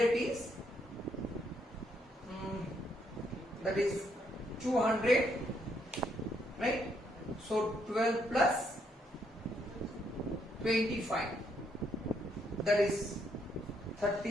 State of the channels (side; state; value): both; normal; correlation 0.74